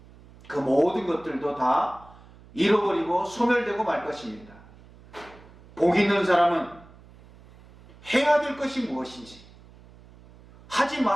그 모든 것들도 다 잃어버리고 소멸되고 말 것입니다. 복이 있는 사람은 해야 될 것이 무엇인지, 하지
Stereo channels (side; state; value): right; noise; hum, 23 dB below the sound